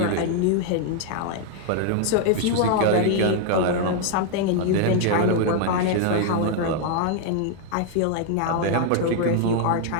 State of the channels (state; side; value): different; both; correlation 0.00